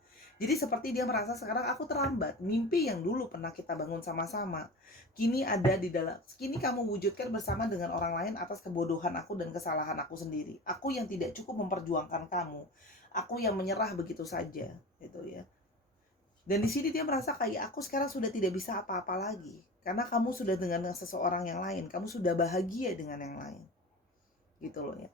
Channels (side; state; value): both; normal; correlation 0.33